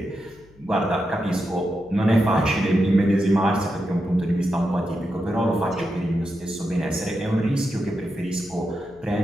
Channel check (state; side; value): noise; left; hum, 27 dB below the sound